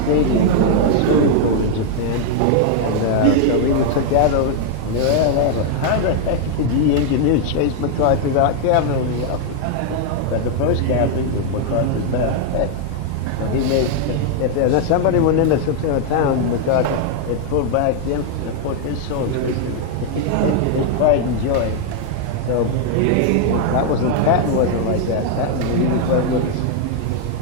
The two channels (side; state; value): both; different; correlation 0.00